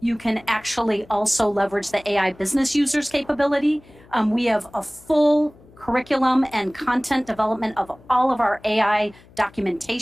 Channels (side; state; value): left; noise; hum, 25 dB below the sound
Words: can actually also leverage the AI business users capability. We have a full curriculum and content development of all of our AI